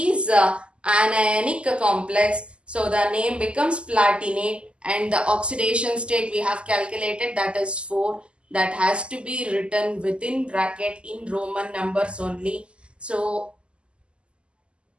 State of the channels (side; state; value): left; late; 0.053 ms